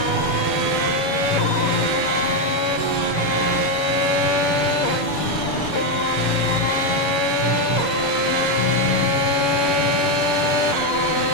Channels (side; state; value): right; late; 7.0 ms